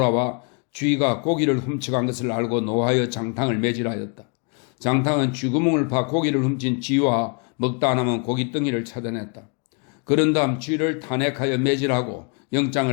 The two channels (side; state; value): right; quieter; 36.9 dB